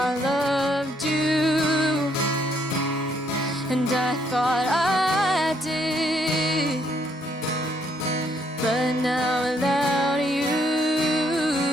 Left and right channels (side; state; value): both; normal; correlation 0.71